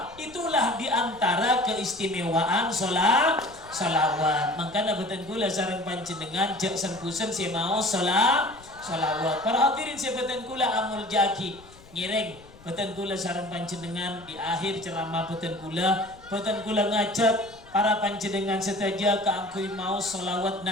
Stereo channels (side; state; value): left; noise; rumble, 23 dB below the sound